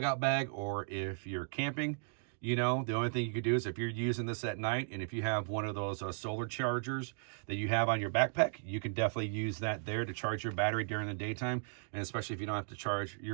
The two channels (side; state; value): left; silent; digital silence